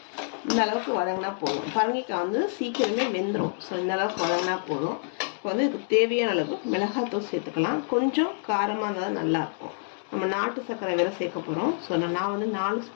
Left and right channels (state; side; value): silent; right; digital silence